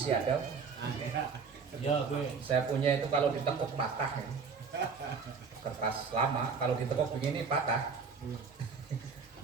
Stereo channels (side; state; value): left; quieter; 5.4 dB